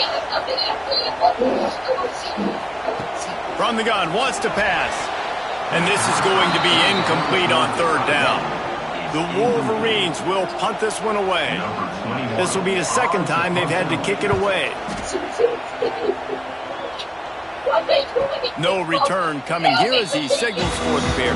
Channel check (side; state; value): both; identical; correlation 1.00